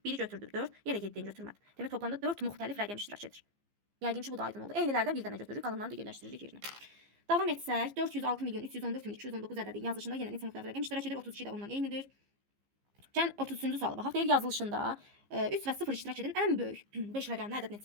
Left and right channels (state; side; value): late; left; 15 ms